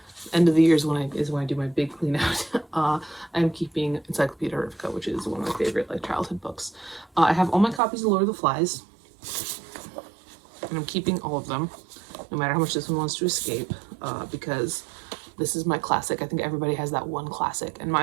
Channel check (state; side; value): drops out; left; at 7.8 s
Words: End of the year is when I do my big clean out. I'm keeping Encyclopedia Erifica, which is one of my favorite like childhood books. I have all my copies of Lord of the Flies, and I'm keeping all of them, no matter how much this one wants to escape, because this is my classic. I think everybody has that one classic, and